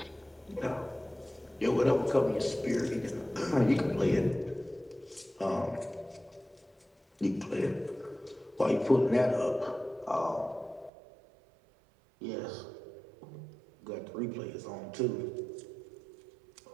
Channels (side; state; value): left; drops out; at 10.9 s